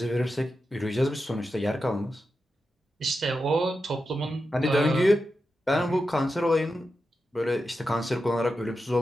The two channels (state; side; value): normal; both; correlation 0.89